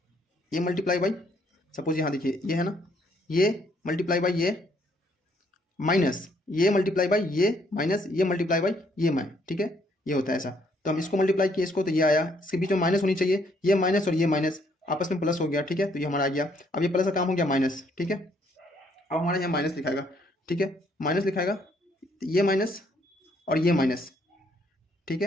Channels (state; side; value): normal; both; correlation 0.68